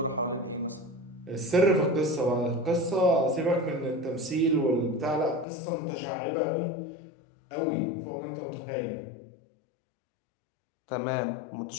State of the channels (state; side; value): drops out; right; at 5.5 s